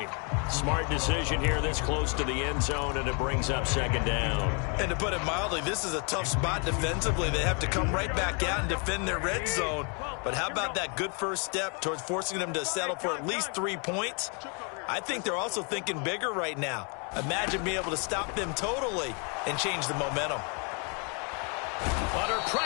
Smart decision here this close to the end zone, and it brings up second down. And to put it mildly, this is a tough spot defensively. They have to come right back out and defend their red zone. But how about that good first step towards forcing them to settle for at least 3 points? I think they're also thinking bigger right now. Imagine being able to stop them totally and change the momentum. Under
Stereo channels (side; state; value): right; quieter; 36.2 dB